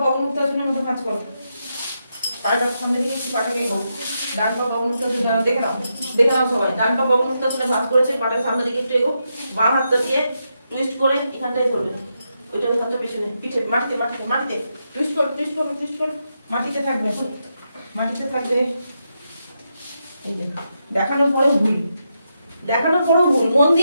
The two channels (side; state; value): both; inverted; correlation -0.84